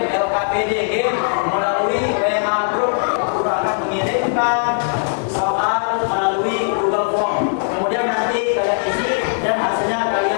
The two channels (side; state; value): right; silent; digital silence